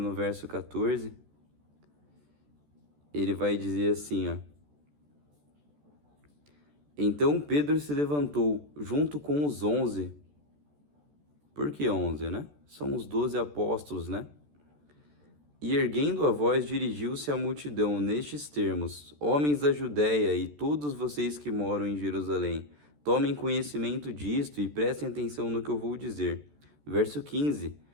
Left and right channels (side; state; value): left; late; 14 ms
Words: verso 14, ele vai dizer assim, ó: Então Pedro se levantou, junto com os 11. Por que 11, né? São os 12 apóstolos, né? E erguendo a voz, dirigiu-se à multidão nestes termos: Homens da Judéia e todos vocês que moram em Jerusalém, tomem conhecimento disto e prestem atenção no que eu vou dizer. Verso 15: